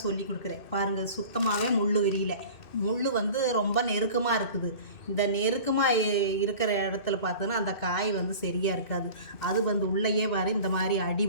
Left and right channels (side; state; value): right; late; 2.6 ms